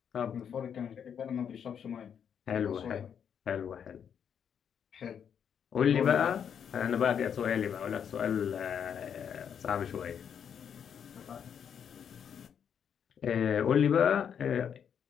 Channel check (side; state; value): right; quieter; 8.0 dB